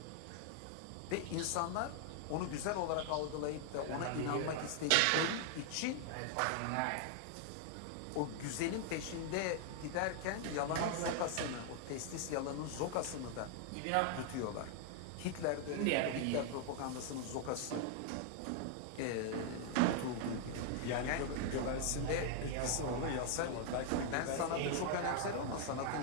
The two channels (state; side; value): different; both; correlation 0.00